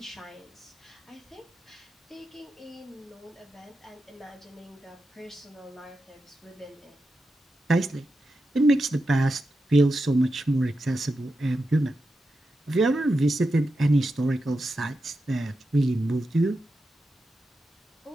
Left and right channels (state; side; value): normal; both; correlation 0.89